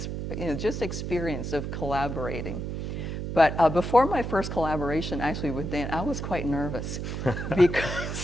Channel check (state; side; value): noise; right; hum, 4 dB below the sound